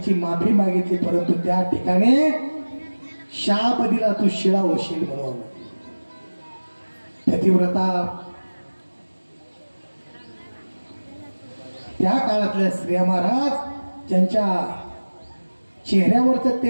माफी मागितली, परंतु त्या ठिकाणी शाप दिला, तू शिळा होशील म्हणून. पतिव्रता त्या काळातल्या स्त्रिया महाराज ज्यांच्या चेहऱ्यावरचं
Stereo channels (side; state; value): both; inverted; correlation -1.00